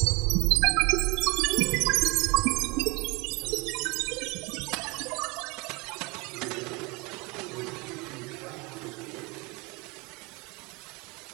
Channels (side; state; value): left; quieter; 26.9 dB